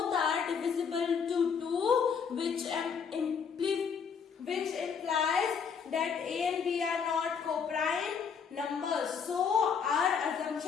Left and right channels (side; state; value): right; quieter; 6.4 dB